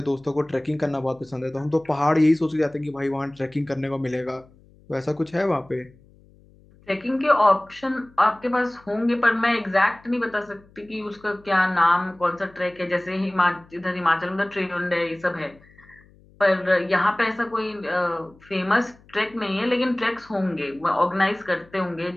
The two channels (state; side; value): noise; left; hum, 27 dB below the sound